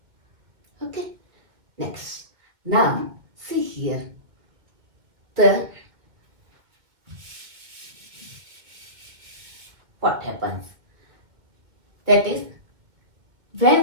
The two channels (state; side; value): late; left; 1.9 ms